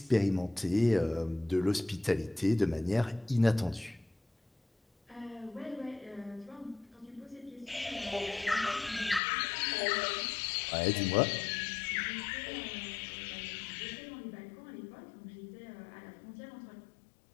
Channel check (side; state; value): right; drops out; at 9.2 s